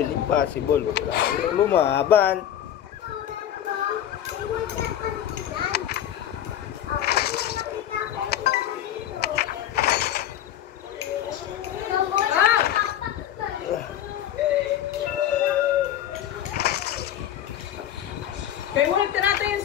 impossible. Kailangan lumaban. Kaya mo nagtarata yan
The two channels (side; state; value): right; quieter; 11.0 dB